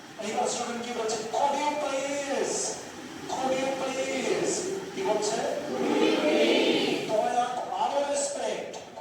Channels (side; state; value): both; identical; correlation 1.00